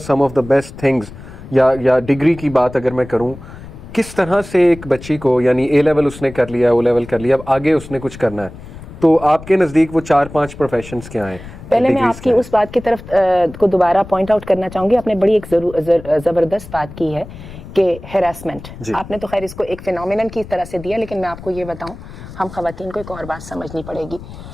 of the best things, या डिग्री की बात अगर मैं करूं, किस तरह से एक बच्ची को, यानी ए लेवल उसने कर लिया, ओ लेवल कर लिया, अब आगे उसने कुछ करना है, तो आपके नज़दीक वो 4-5 प्रोफेशंस क्या हैं? पहले मैं आपकी उस बात की तरफ को दोबारा पॉइंट आउट करना चाहूँगी। आपने बड़ी एक ज़बरदस्त बात की है कि हैरेसमेंट, आपने तो खैर इसको एक फिनोमिनन की तरह से दिया, लेकिन मैं आपको ये बताऊं, हम खवातीन को एक और बात समझनी पड़ेगी।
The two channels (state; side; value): noise; left; rumble, 15 dB below the sound